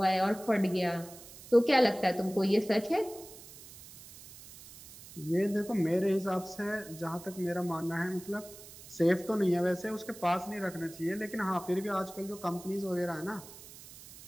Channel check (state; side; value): noise; right; hiss, 18 dB below the sound